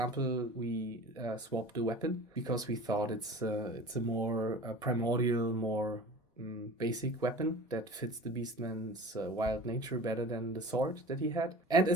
we swapped the weapon because we thought it's a more primordial, more basic weapon that fits the beastman's wild nature better than the sword that he had. And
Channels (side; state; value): both; normal; correlation 0.38